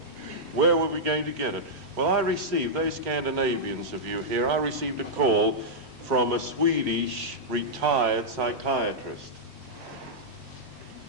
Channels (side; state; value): left; late; 3.1 ms